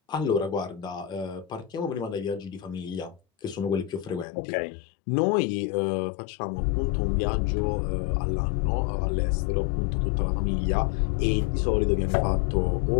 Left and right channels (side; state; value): right; drops out; at 4.2 s